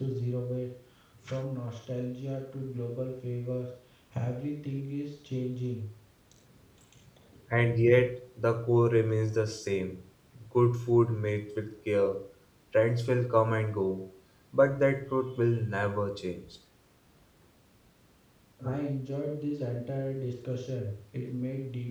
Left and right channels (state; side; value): identical; both; correlation 1.00